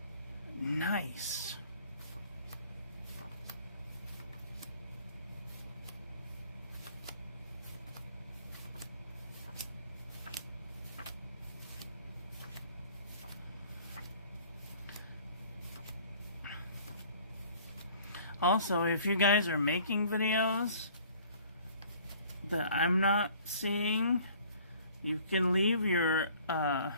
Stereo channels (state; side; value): inverted; both; correlation -0.53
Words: nice. Also, if you guys are making videos that I'm not seeing, you can leave your